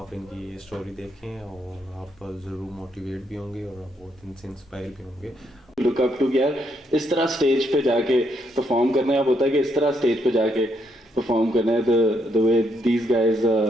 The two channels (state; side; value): normal; both; correlation 0.76